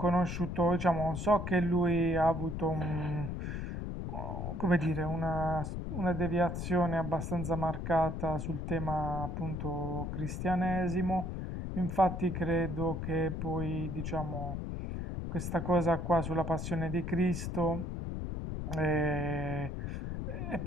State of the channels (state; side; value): noise; left; rumble, 4 dB below the sound